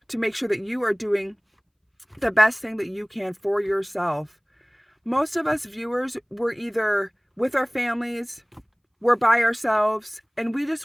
the best thing that you can for yourself. Most of us viewers, we're either with our families, we're by ourselves, and we just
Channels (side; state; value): both; identical; correlation 1.00